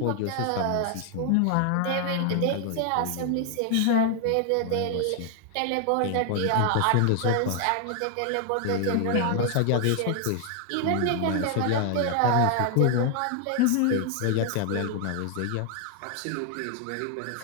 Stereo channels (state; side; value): different; both; correlation 0.00